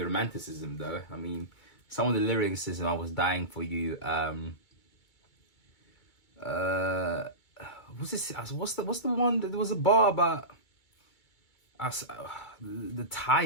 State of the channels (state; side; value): late; right; 2.3 ms